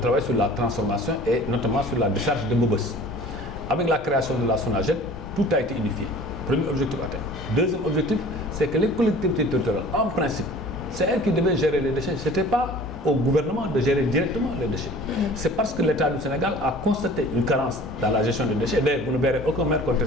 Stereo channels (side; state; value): both; normal; correlation 0.45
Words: sur la transformation et notamment sur la décharge de Mobos. Avec la création de la SONAGED, tout a été unifié. Premier objectif atteint. Deuxième objectif, c'est que les collectivités territoriales, en principe, c'est elles qui devaient gérer les déchets. Ce n'était pas au gouvernement de gérer directement les déchets. C'est parce que l'État du Sénégal a constaté une carence dans la gestion des déchets. D'ailleurs, vous ne verrez aucun maire